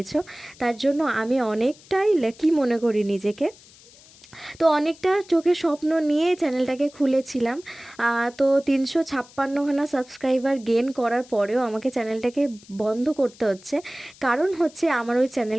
তার জন্য আমি অনেকটাই লাকি মনে করি নিজেকে। তো অনেকটা চোখে স্বপ্ন নিয়ে চ্যানেলটাকে খুলেছিলাম। তো 356খানা সাবস্ক্রাইবার গেন করার পরেও আমাকে চ্যানেলটাকে বন্ধ করতে হচ্ছে। কারণ হচ্ছে আমার ওই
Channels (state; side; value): noise; left; hiss, 24 dB below the sound